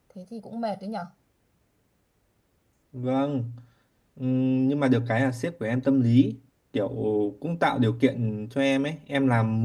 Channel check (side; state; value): both; identical; correlation 1.00